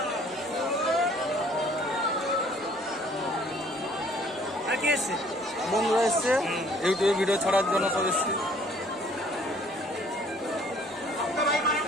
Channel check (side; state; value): both; normal; correlation 0.58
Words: বন্ধুরা এসছে ইউটিউবে ভিডিও ছাড়ার জন্য সব এসছে